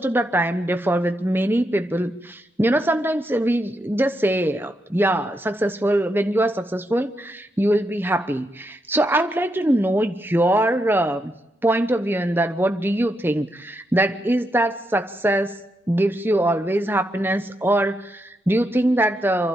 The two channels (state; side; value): normal; both; correlation 0.82